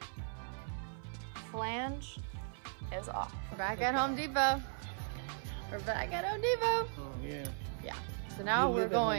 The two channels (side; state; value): left; silent; 53 dB below the other